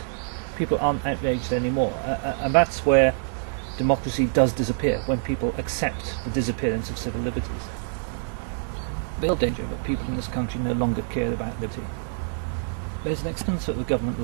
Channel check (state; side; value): silent; left; digital silence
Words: people aren't outraged anymore, and that's where democracy does disappear, when people accept the disappearance of civil liberties. The real danger that people in this country no longer care about liberty. There's an extent that the government